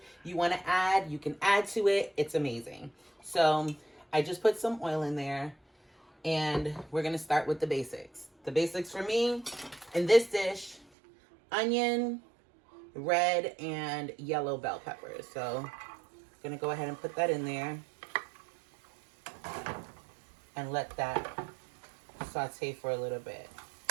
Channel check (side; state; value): left; drops out; at 10.9 s